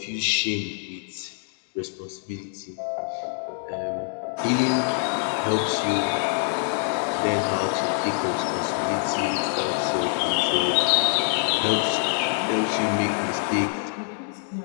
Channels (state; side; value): silent; right; 62 dB below the other